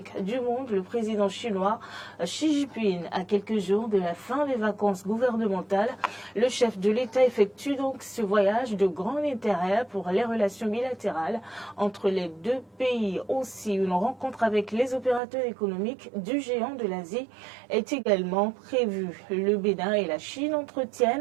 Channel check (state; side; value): drops out; left; at 15.2 s